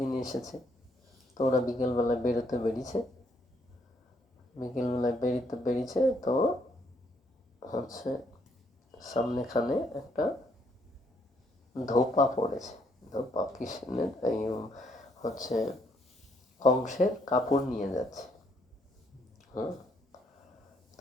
এসেছে। তো ওরা বিকেলবেলায় বেরিয়েছে, তো হচ্ছে সামনেখানে একটা ধোপা পড়েছে, ধোপা কৃষ্ণের এই হচ্ছে কংসের কাপড় নিয়ে যাচ্ছে।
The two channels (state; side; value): normal; both; correlation 0.71